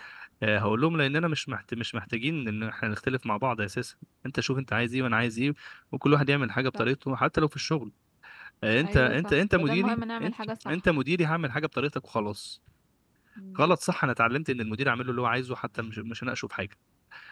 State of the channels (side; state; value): both; identical; correlation 1.00